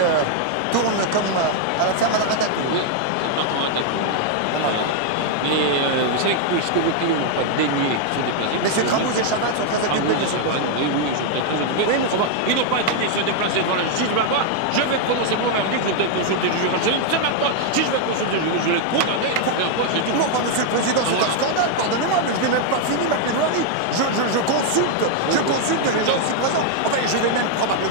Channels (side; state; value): both; different; correlation 0.00